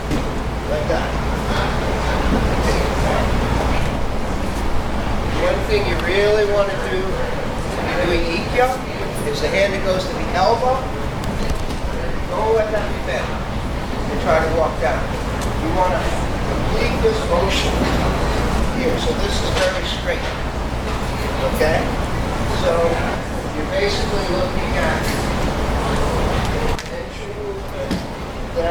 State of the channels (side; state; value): both; identical; correlation 1.00